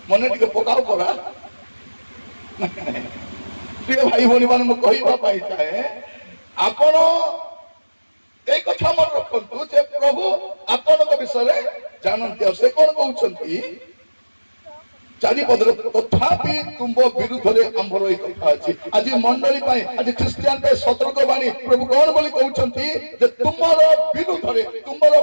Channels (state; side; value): inverted; both; correlation -1.00